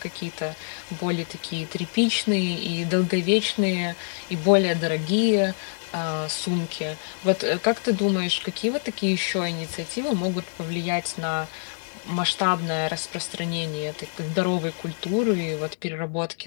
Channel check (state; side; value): silent; right; digital silence